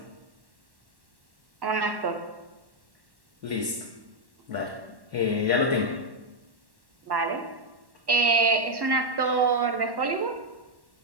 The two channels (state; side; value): late; left; 1.1 ms